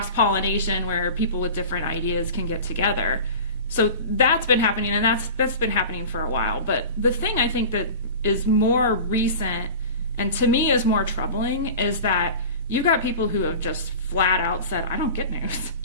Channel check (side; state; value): both; inverted; correlation -0.35